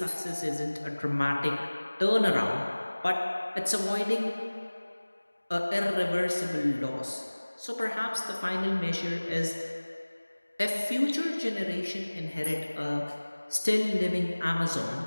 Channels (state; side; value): inverted; both; correlation -1.00